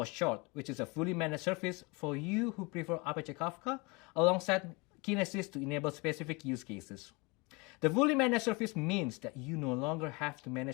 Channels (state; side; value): quieter; right; 27.6 dB